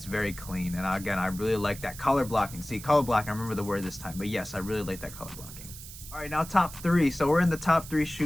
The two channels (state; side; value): noise; right; hiss, 14 dB below the sound